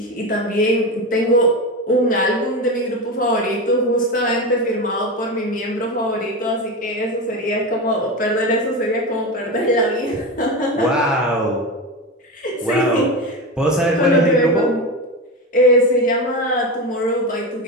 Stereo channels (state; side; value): normal; both; correlation 0.20